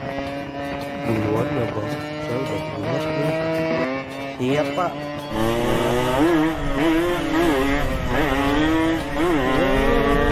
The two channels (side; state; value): both; identical; correlation 1.00